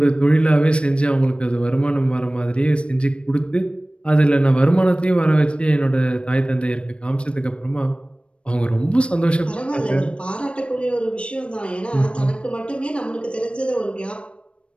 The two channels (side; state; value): right; late; 0.059 ms